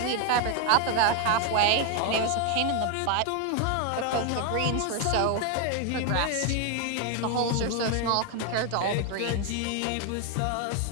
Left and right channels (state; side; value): different; both; correlation 0.00